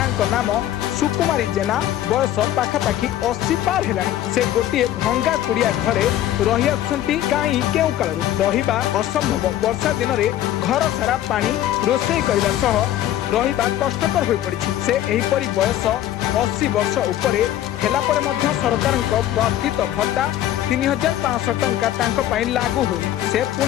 नाम सुकुमारी जेना बयस पाखापाखि 80 पार है। से गोटे भंगा कुड़िया घरे रही आसुंती कहीं केउ काल रहिबा असंभव। वर्षा दिन में घर सारा पानी रोषे करने सह रहिबा कष्टकर हो पड़ी। से एहीपरि बयस 80 वर्ष उपरे हेला परे मध्य सरकार प्रस्थित भत्ता 3500 टंका लागू हुए। से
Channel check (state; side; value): quieter; right; 12.6 dB